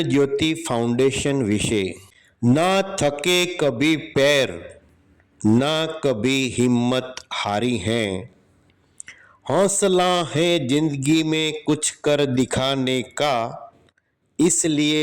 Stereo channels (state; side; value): identical; both; correlation 1.00